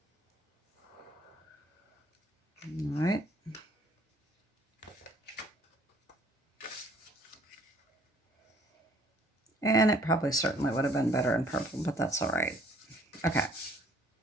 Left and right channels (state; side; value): normal; both; correlation 0.59